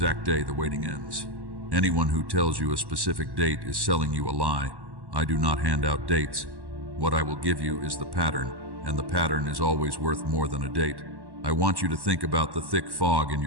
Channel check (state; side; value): late; left; 1.1 ms